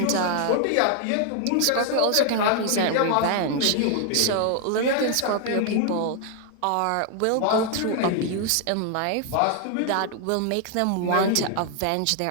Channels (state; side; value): different; both; correlation 0.00